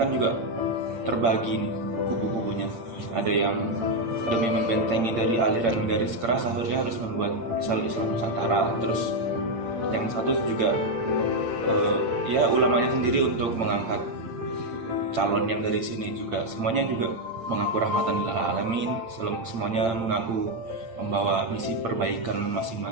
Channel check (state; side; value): late; left; 8.7 ms